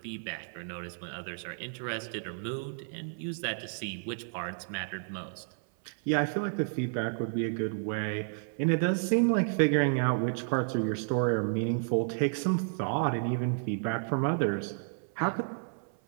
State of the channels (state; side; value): silent; left; 57 dB below the other